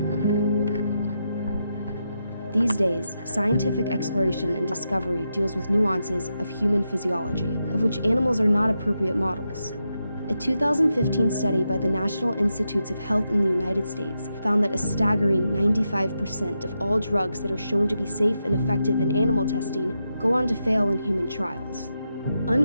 These days, scientific exploration and discovery deals with nuances of human physiology, of which animals are not appropriate models. A 2015 study by the National Institutes of Health in the United States found that a staggering 95% of all drugs that are shown to be safe and effective in animal testing go on to fail in human trials.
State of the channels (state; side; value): inverted; both; correlation -0.86